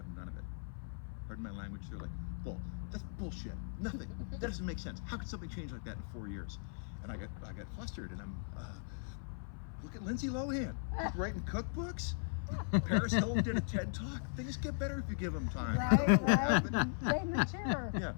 none of it. Pardon my language. They're like, that's bullshit. Nothing. That doesn't make sense. How could something change like that in 4 years? And I got flustered. And I'm, look at Lindsay Lohan. She's writing cookbooks. Paris Hilton did a TED Talk. Things get better if you give them time. I don't know what happened. Right in the chair. Yeah,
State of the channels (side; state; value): right; silent; 52 dB below the other